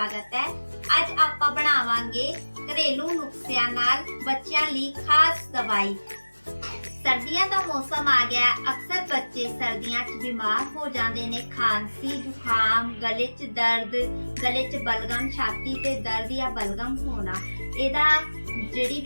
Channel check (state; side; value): inverted; both; correlation -1.00